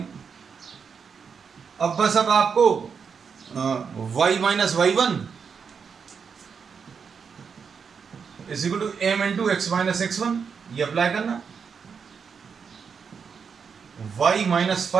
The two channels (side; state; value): left; quieter; 6.2 dB